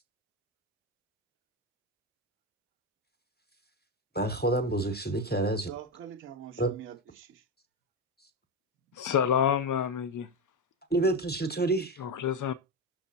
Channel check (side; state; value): both; normal; correlation 0.14